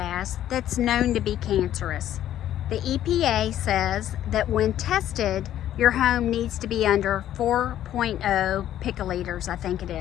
that's known to be cancerous. The EPA says that when tested, your home needs to be under 4.0 picoliters, I think it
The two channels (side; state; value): right; quieter; 11.9 dB